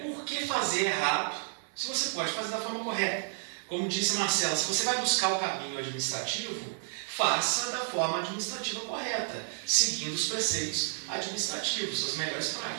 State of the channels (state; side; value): silent; left; digital silence